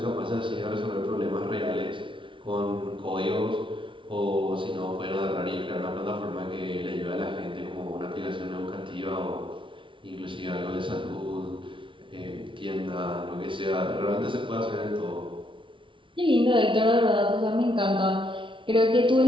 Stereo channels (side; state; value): left; late; 0.25 ms